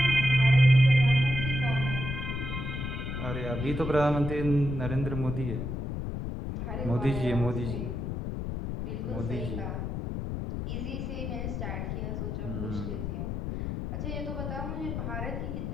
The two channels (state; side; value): noise; left; rumble, 4 dB below the sound